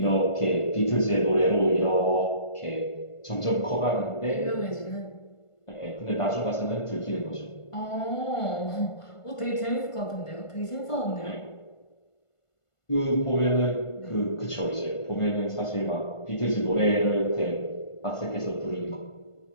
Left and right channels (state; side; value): late; right; 1.5 ms